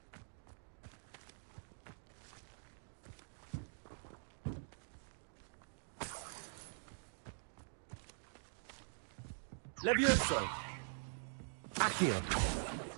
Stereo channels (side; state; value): left; silent; digital silence